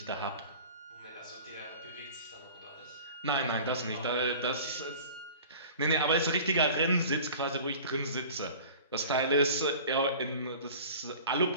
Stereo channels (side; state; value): both; inverted; correlation -0.42